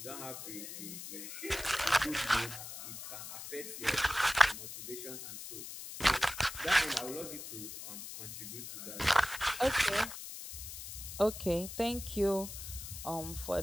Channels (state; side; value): noise; left; hiss, 9 dB below the sound